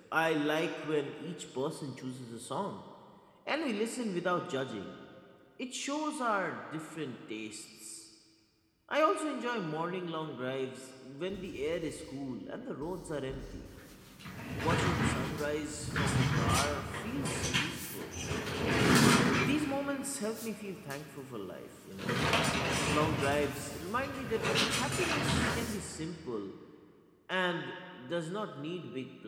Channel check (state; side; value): identical; both; correlation 1.00